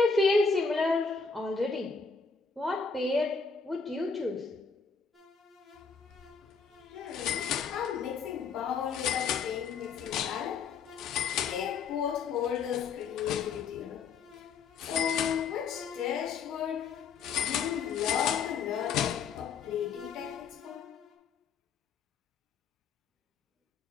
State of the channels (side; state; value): right; quieter; 5.4 dB